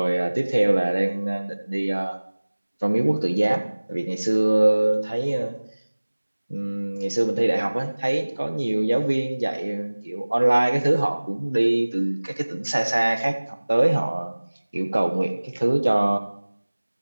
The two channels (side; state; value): both; inverted; correlation -1.00